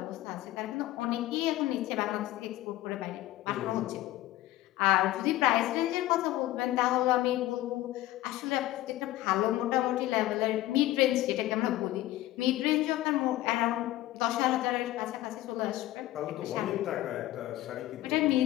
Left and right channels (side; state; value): right; quieter; 15.9 dB